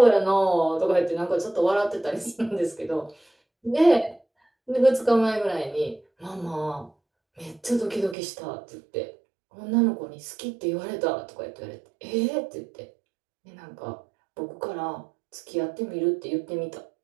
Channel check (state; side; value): drops out; left; at 8.2 s